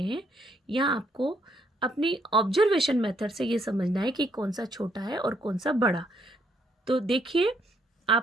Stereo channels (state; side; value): normal; both; correlation 0.71